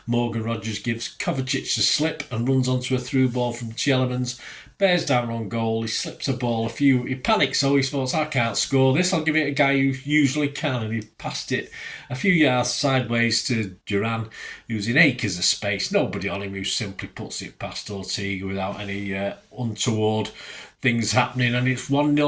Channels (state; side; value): identical; both; correlation 1.00